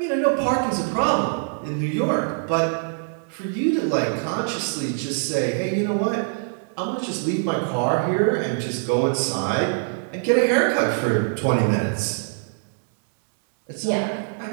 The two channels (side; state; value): left; silent; 63 dB below the other